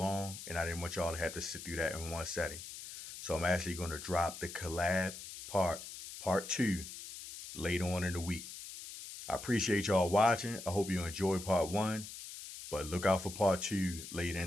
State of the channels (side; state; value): left; noise; hiss, 11 dB below the sound